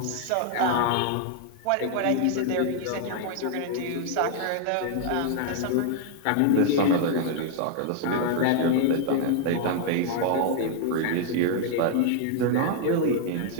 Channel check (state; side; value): different; both; correlation 0.00